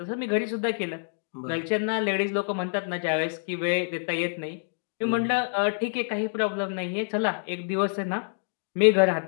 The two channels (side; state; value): right; silent; digital silence